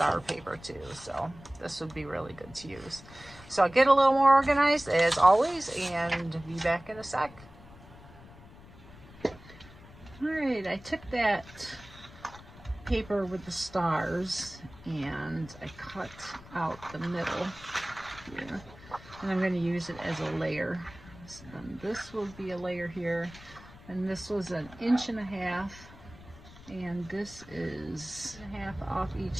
paper too, so this would be really good to use. So I'll get a little more organized as always and be back in a sec. All right, I took that paper with the stars and I cut out the middle here, and I'm going to use it as a layer. And this will be a layer here, and this was 1.5 inches, and this is 1.5 off each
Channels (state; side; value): noise; left; rumble, 19 dB below the sound